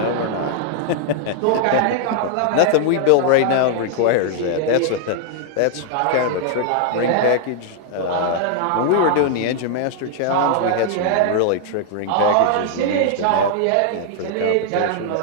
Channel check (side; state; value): both; different; correlation 0.00